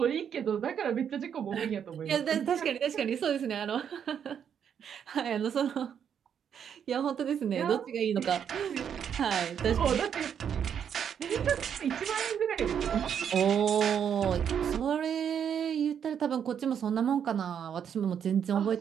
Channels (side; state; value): left; quieter; 8.2 dB